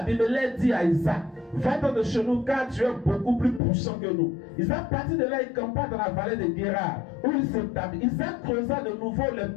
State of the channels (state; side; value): drops out; right; at 3.6 s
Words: dit à Isaac, va-t'en de chez nous car tu es beaucoup plus puissant que nous. Isaac partit de là et campa dans la vallée de Guérar où il s'établit. Isaac creusa de nouveau les